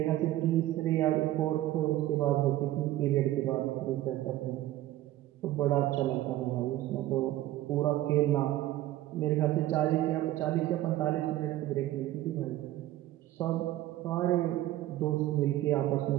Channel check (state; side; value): quieter; left; 14.8 dB